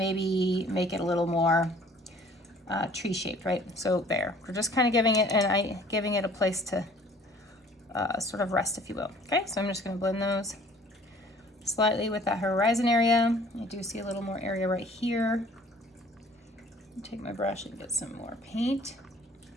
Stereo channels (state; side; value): normal; both; correlation 0.53